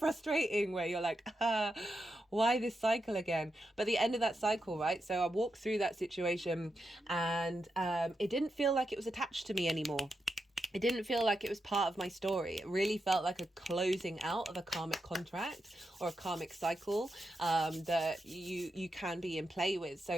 where you're like, why this cycle again? But the end of that cycle, right? So I walked through that situation, and it didn't feel like it was attached to me anymore. It didn't feel like it was part of my story. It really felt like a closing out of a karmic contract or a karmic cycle that you can be in play with.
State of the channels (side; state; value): both; normal; correlation 0.86